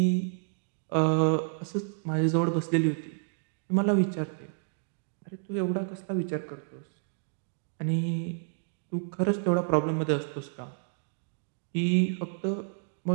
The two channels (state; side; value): silent; left; digital silence